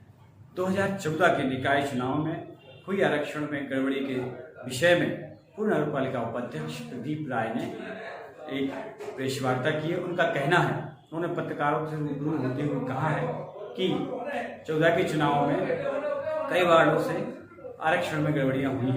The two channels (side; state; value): both; identical; correlation 1.00